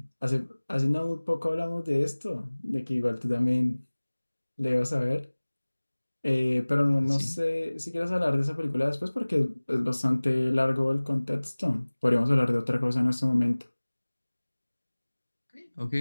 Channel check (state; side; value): inverted; both; correlation -1.00